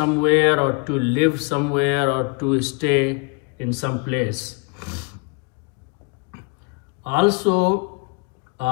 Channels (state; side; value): quieter; right; 31.5 dB